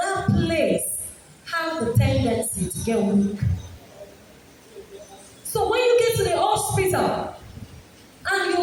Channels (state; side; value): identical; both; correlation 1.00